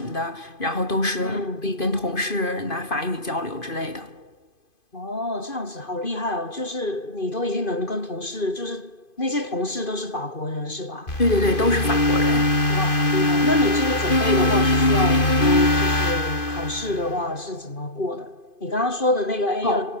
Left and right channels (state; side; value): late; right; 2.5 ms